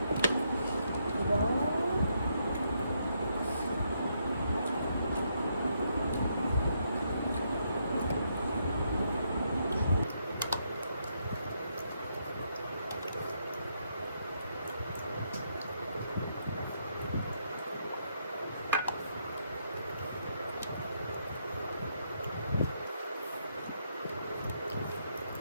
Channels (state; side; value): inverted; both; correlation -0.76